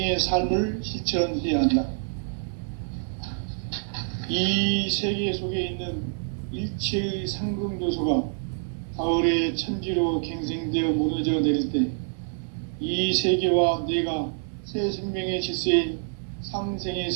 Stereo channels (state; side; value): silent; left; digital silence